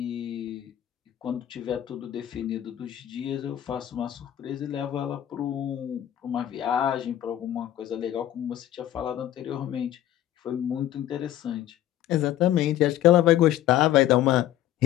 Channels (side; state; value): right; quieter; 12.4 dB